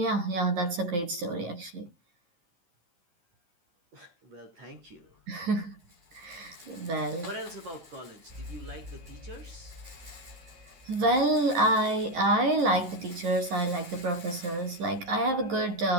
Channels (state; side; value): late; left; 12 ms